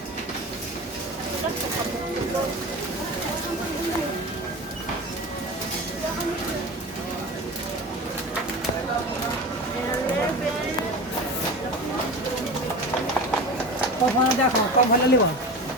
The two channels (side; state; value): both; normal; correlation 0.30